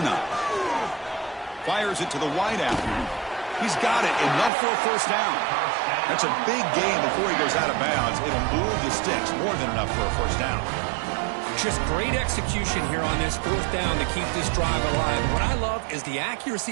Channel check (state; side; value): drops out; left; at 4.5 s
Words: Fires it to the wideout. He's got it. Enough for a first down. That's a big gain before he goes out of bounds. It'll move the sticks. More than enough for a first down. Just great execution here on this fourth down to keep this drive alive. What I love is the